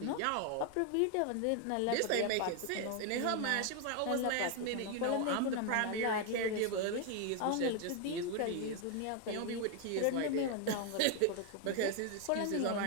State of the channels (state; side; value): different; both; correlation 0.01